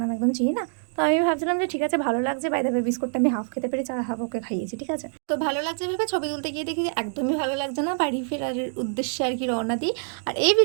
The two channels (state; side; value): silent; left; 61 dB below the other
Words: একদম চিনি না। তো আমি ভাবছিলাম যে ঠিক আছে, ভালো লাগছে, বাই দ্য ওয়ে বিস্কুটটা আমি হাফ খেতে পেরে চা হাফ ওকে খাইয়েছি, ঠিক আছে। তো ভালো লাগছে ভেবে ছবি তুলতে গিয়ে দেখি একদমই ভালো লাগছে না, বাড়ি ফেরার উদ্দেশ্যে আর কি রওনা দিই। আর এই